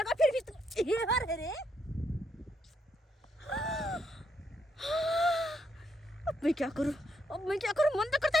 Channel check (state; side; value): normal; both; correlation 0.77